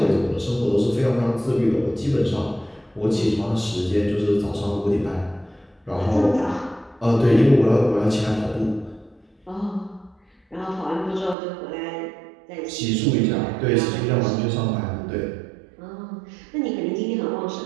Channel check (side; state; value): left; drops out; at 11.4 s